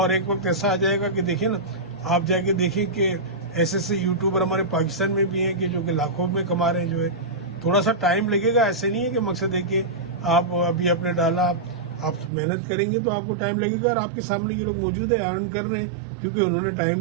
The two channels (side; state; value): left; drops out; at 12.3 s